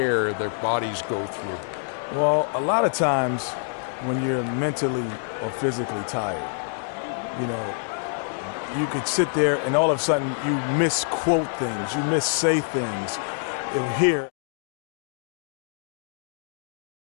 their bodies go through? Well, a lot of times when you're mentally or physically tired, you could sit there and all of a sudden you misquote things, you missay things. Here.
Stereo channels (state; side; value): silent; right; digital silence